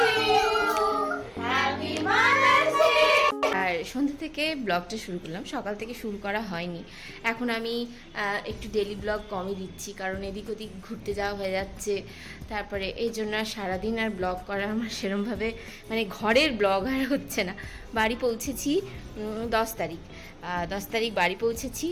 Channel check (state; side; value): identical; both; correlation 1.00